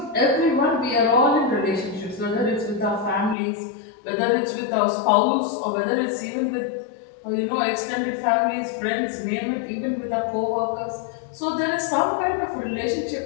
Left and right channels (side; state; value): right; drops out; at 3.4 s